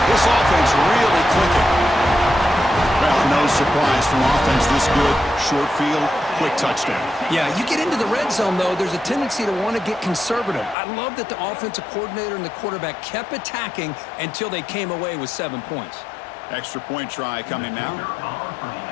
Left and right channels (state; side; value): drops out; right; at 10.8 s